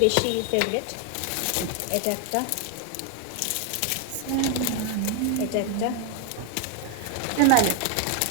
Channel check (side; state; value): both; different; correlation 0.01